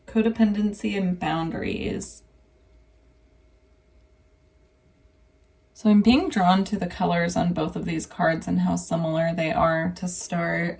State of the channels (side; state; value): both; identical; correlation 1.00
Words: codependency, and boundaries. So I'm being drawn to the colors on both of these cards and how similar they are to start.